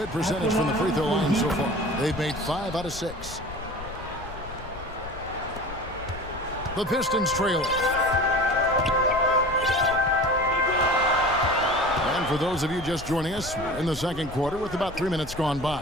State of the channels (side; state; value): left; noise; rumble, 14 dB below the sound